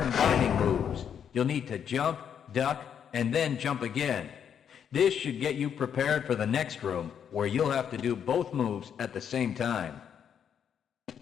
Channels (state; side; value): quieter; right; 8.3 dB